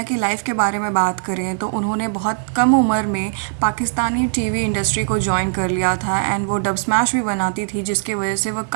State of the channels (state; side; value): silent; left; digital silence